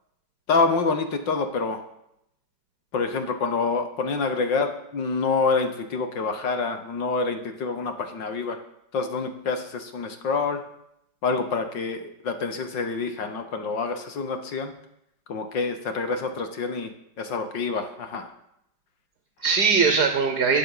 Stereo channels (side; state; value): right; late; 5.6 ms